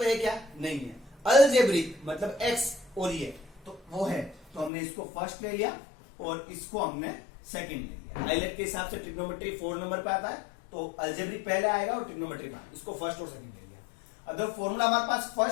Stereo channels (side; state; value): right; drops out; at 4.7 s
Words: है क्या? नहीं है. अलजेब्रिक मतलब x और ये तो वो है, तो हमने इसको फर्स्ट ले लिया और इसको हमने सेकंड ले लिया. आइलेट के हिसाब से ट्रिग्नोमेट्री 4 नंबर पे आता है तो अलजेब्रिक पहले आएगा और ट्रिग्नोमेट्री में, इसको फर्स्ट और सेकंड ले लिया. अगर फॉर्मूला हमारे पास